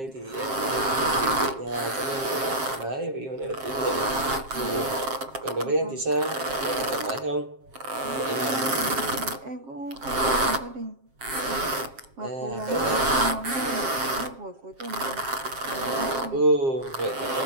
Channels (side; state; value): left; late; 7.5 ms